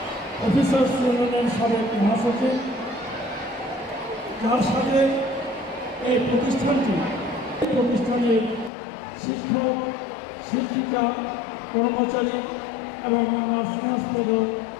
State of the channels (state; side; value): drops out; right; at 8.7 s